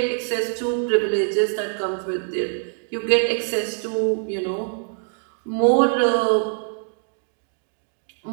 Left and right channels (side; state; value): left; silent; 63 dB below the other